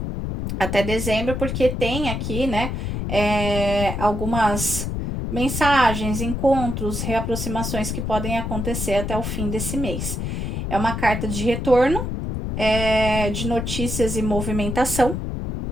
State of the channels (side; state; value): left; noise; rumble, 3 dB below the sound